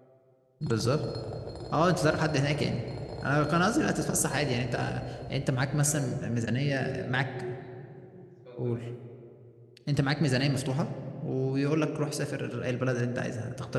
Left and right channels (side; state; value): both; identical; correlation 1.00